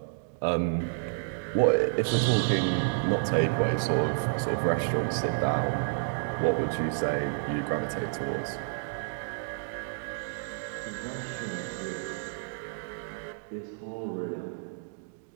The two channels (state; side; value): silent; left; digital silence